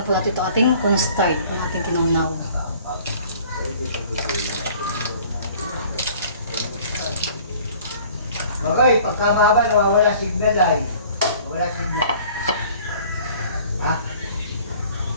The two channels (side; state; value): both; inverted; correlation -0.51